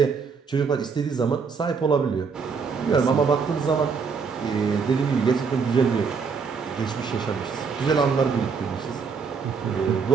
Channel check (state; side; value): quieter; left; 5.6 dB